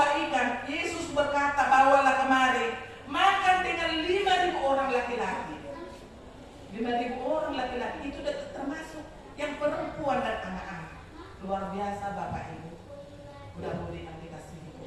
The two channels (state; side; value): identical; both; correlation 1.00